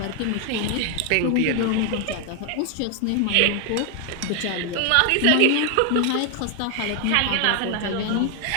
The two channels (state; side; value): different; both; correlation 0.01